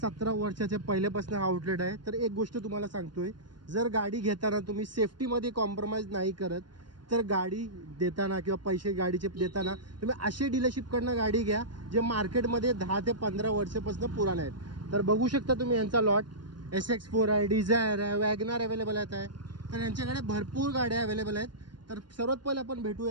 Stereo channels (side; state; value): left; late; 0.71 ms